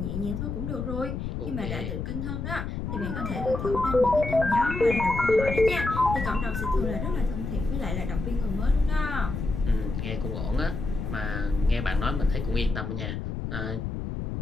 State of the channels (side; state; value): left; noise; rumble, 4 dB below the sound